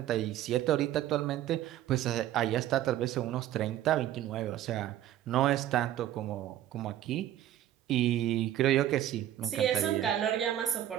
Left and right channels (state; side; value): quieter; left; 12.3 dB